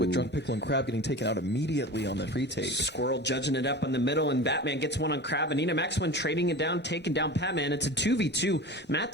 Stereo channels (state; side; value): normal; both; correlation 0.33